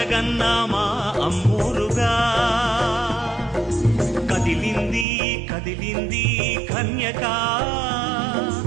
మా అమ్మోరుగా కదిలింది కదిలింది కన్యక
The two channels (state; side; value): drops out; left; at 5.1 s